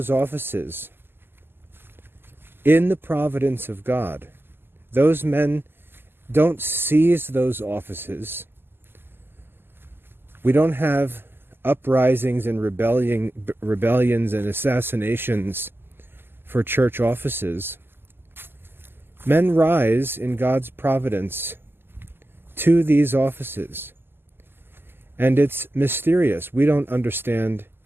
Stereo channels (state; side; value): late; left; 0.10 ms